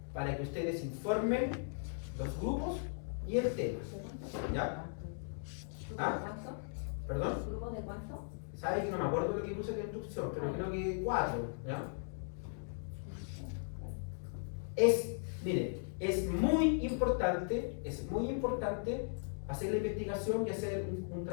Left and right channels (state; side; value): silent; right; digital silence